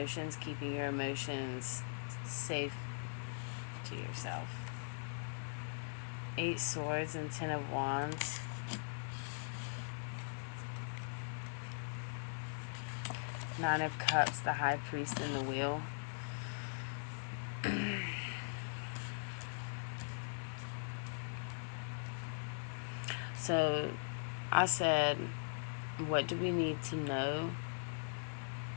keeping your emotions safe to yourself. 8 Swords and 10 of Wands. Nine of Cups, the High Priest and the Wheel. So I said, what do we need to know?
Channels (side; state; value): right; silent; 51 dB below the other